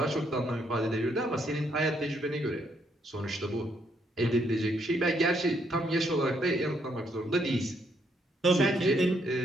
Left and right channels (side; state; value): both; normal; correlation 0.73